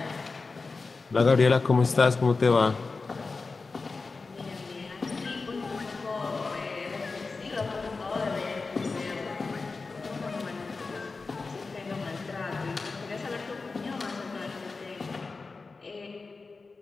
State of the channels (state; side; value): quieter; right; 4.1 dB